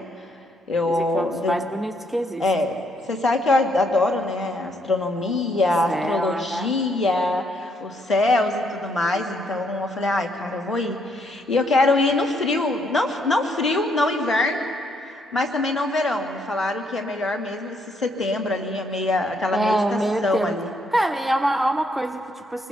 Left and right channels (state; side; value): normal; both; correlation 0.72